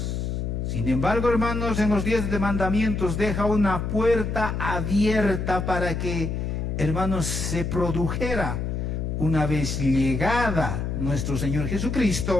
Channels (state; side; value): noise; left; hum, 2 dB below the sound